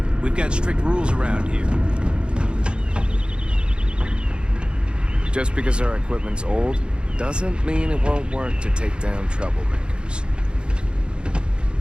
We've got strict rules around here. Just because our equipment's old, doesn't mean it won't work to take down troublemakers.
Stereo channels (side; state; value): left; late; 0.053 ms